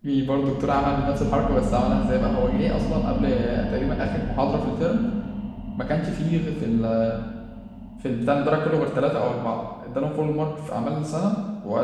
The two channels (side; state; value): both; identical; correlation 1.00